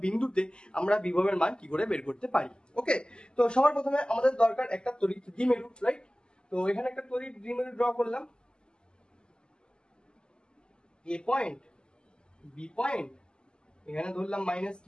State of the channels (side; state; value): right; late; 0.047 ms